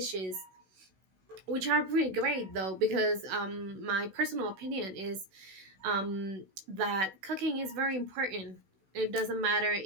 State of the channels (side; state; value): left; late; 16 ms